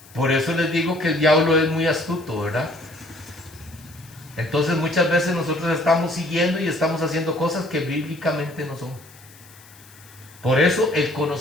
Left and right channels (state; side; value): noise; left; hiss, 23 dB below the sound